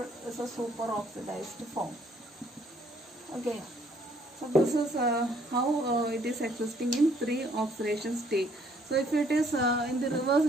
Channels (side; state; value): both; normal; correlation 0.64